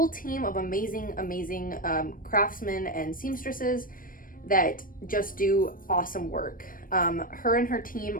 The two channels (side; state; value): right; late; 0.40 ms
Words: team of amazing craftsmen and seamstresses that just do awesome work. Her and her